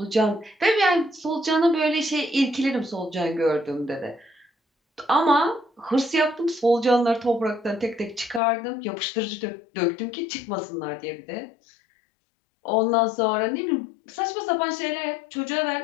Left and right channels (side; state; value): right; drops out; at 8.4 s